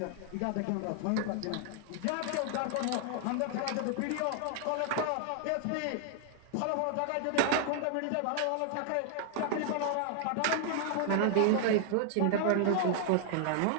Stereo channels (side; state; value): both; different; correlation 0.00